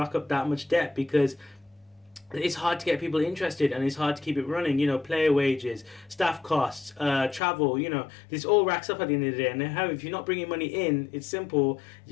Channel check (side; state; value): right; drops out; at 7.4 s